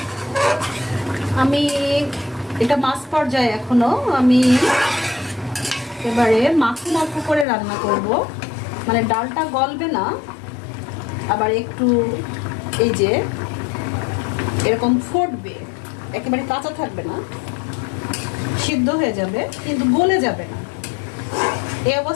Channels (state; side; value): drops out; right; at 7.5 s